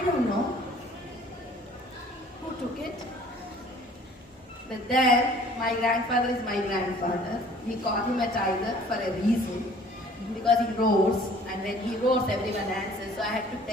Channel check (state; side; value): normal; both; correlation 0.52